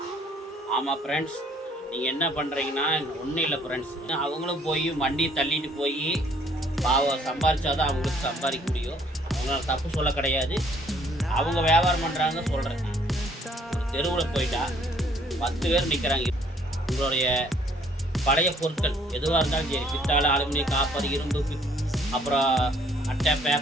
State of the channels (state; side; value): normal; both; correlation 0.61